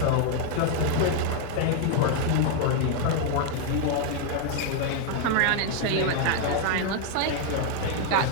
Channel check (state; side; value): different; both; correlation 0.01